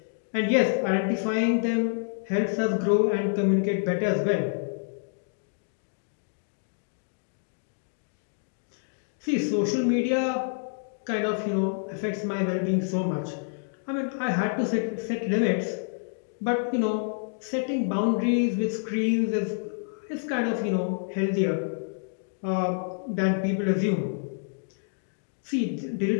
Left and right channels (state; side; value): silent; right; digital silence